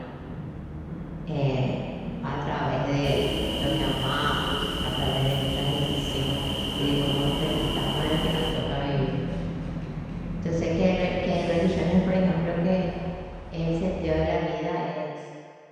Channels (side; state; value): both; identical; correlation 1.00